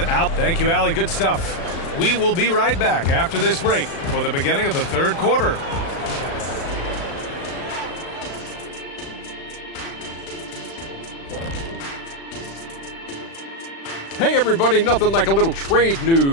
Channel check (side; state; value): right; late; 36 ms